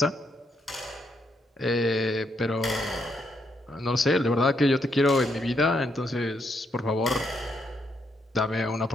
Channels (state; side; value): normal; both; correlation 0.77